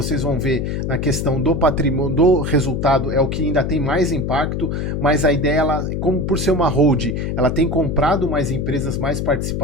vão ver na questão do patrimônio, do resultado, é o que ainda tem mais impacto, mas a ideia, ela, como por ser uma hold, ela tem comprado mais empresas, mais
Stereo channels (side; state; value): left; noise; hum, 2 dB below the sound